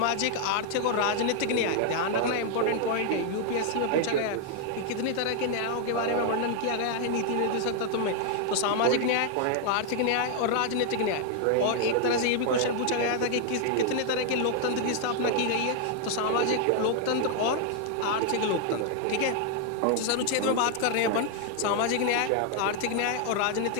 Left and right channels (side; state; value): both; different; correlation 0.00